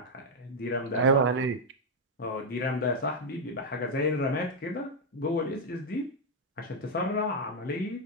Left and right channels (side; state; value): both; normal; correlation 0.01